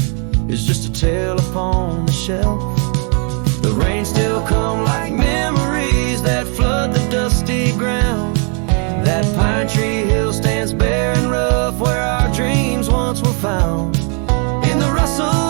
is just a tale upon the shelf. The rain still come like memories that flood the dusty ground. That pine tree hill stands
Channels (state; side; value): quieter; left; 38.2 dB